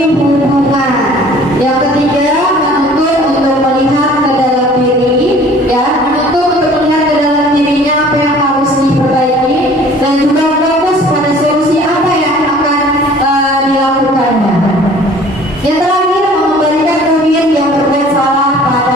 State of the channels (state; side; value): normal; both; correlation 0.51